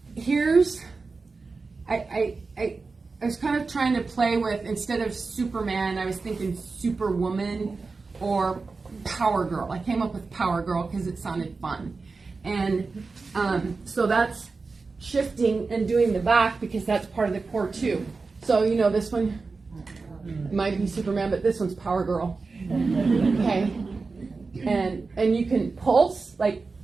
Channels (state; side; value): quieter; left; 4.2 dB